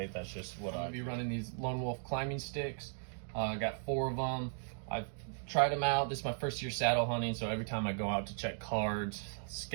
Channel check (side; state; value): left; silent; digital silence